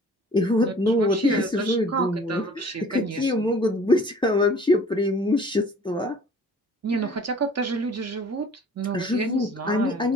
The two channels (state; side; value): normal; both; correlation 0.50